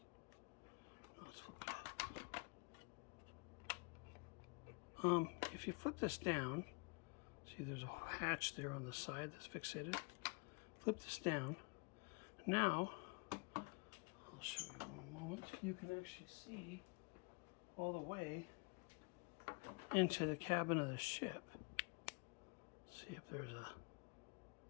Let's flip it up. If you flip this down, see there's a hatch there on the side that's fixated. Flip this down. Now, I'll show you one moment. You can actually see all the way into the cabin of the ship. See if there's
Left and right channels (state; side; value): quieter; right; 31.8 dB